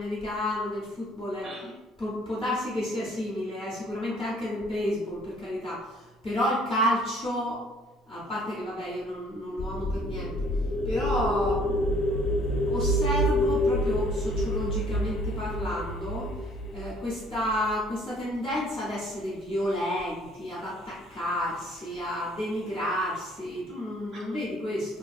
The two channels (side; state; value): both; normal; correlation 0.59